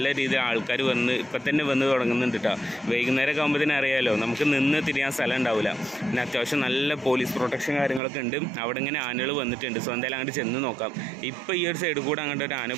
രീതിയിൽ ആൾക്കാർ ഇപ്പം തന്നെ വന്ന് തുടങ്ങുന്നുണ്ട് കേട്ടോ. വൈകുന്നേരമൊക്കെ ആകുമ്പോഴത്തേനും അറിയാമല്ലോ, നമുക്ക് നിന്ന് തിരിയാൻ സ്ഥലം ഉണ്ടാവില്ല. പിന്നെ അത്യാവശ്യം നല്ല പോലീസ് പ്രൊട്ടക്ഷൻ കാര്യങ്ങളൊക്കെ ഉണ്ട്. അവിടെ ഇങ്ങനെ ആനകൾ വന്നിട്ടുണ്ട്. സോ എന്തായാലും അങ്ങോട്ട് ചെന്ന് നോക്കാം. ഇപ്പോൾ ഈ ഒരു സൈഡിൽ കൂടെ അങ്ങോട്ട് ഒരു ആന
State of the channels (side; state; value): left; drops out; at 8.0 s